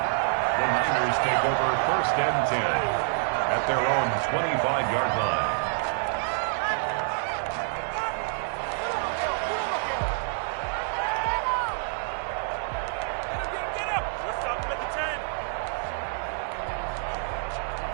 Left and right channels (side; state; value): left; silent; digital silence